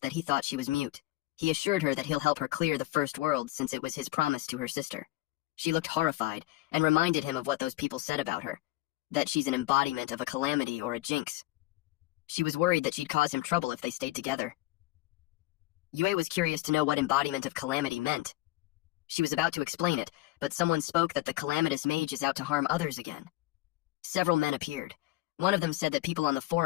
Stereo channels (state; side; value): quieter; right; 17.8 dB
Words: that he thought she was mute. He assured her that he'll help her clear the first world since it was his promise to her sister. She looked horrified and reminded him of what those people said about her, that she's an embodiment of a calamity or a jinx. She was worried that she'd cause him trouble if they stayed together. Yue was curious to know what embodiment of calamity meant. She was about to explain it, but someone spoke that the calamitous mage is out to harm others again. Several men appeared. One of them said that people on the